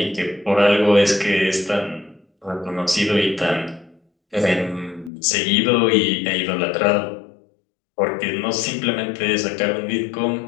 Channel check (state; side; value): drops out; right; at 5.1 s